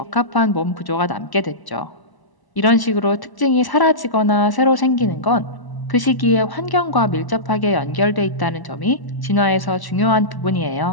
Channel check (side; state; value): right; late; 1.0 ms